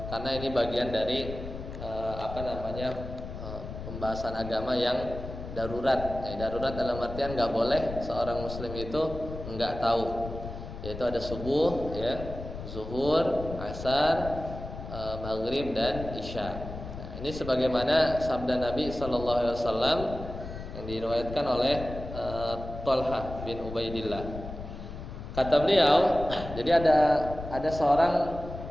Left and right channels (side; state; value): left; noise; rumble, 10 dB below the sound